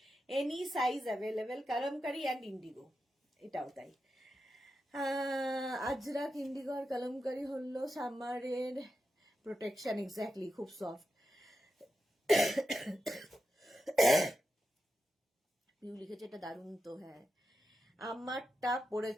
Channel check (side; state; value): both; normal; correlation 0.89